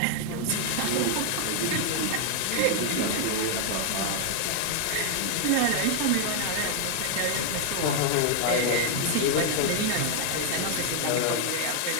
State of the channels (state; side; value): different; both; correlation 0.00